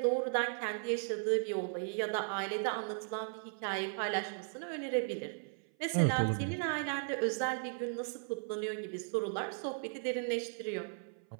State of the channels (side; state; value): left; silent; 53 dB below the other